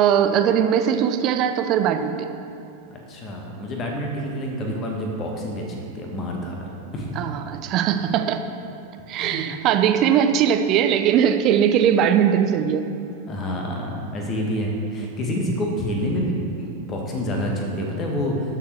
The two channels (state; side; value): quieter; left; 6.1 dB